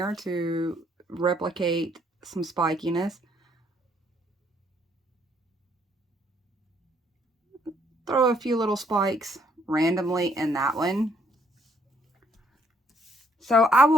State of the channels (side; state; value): both; normal; correlation 0.67